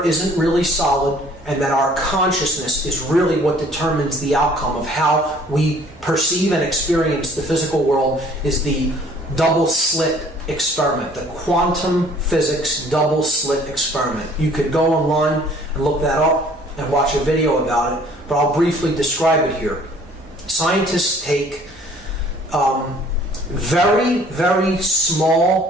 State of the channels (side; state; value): both; normal; correlation 0.55